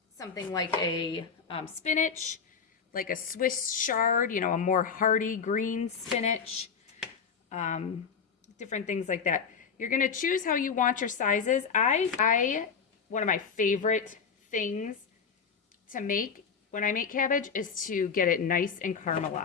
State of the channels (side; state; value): right; quieter; 6.1 dB